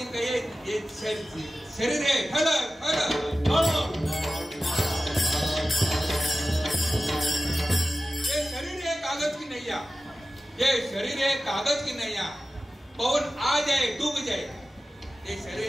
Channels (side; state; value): both; normal; correlation 0.94